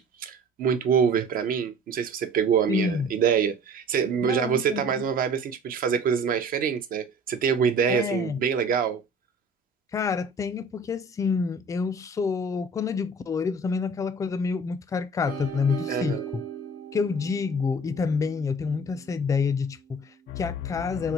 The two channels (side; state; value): both; normal; correlation 0.47